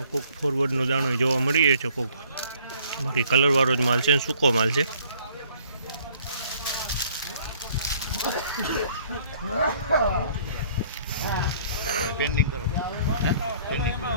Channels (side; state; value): both; inverted; correlation -0.58